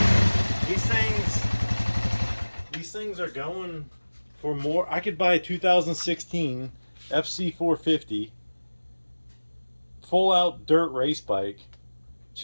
These things are going for more. I could buy a 2016 FC450 full out dirt race bike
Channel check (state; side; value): inverted; both; correlation -1.00